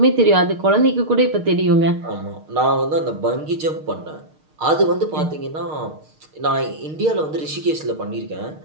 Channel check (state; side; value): late; left; 6.5 ms